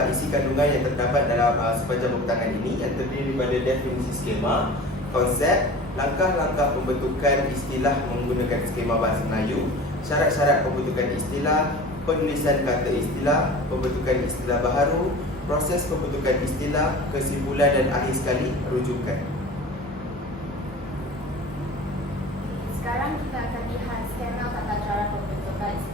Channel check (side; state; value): both; normal; correlation 0.38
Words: isi kandungan yang terdapat dalam sepanjang pembentangan ini, yang terdiri daripada definisi skema, konsep, langkah-langkah pembentukan istilah menggunakan skema bahasa Melayu, syarat-syarat pembentukan istilah, penulisan kata istilah, pembentukan istilah baharu, proses pembentukan istilah, kesimpulan dan akhir sekali rujukan. Sekarang kita akan lihat skema tata cara pembentukan